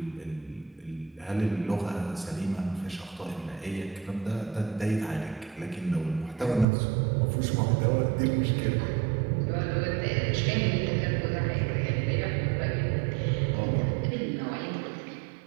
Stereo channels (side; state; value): left; drops out; at 6.7 s